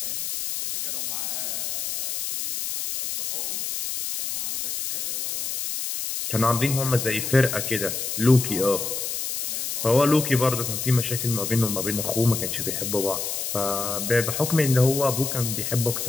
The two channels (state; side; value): noise; left; hiss, 3 dB below the sound